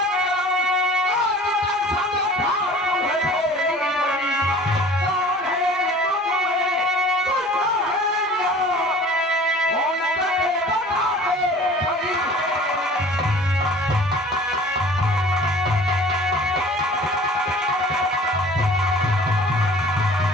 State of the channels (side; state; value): both; normal; correlation 0.46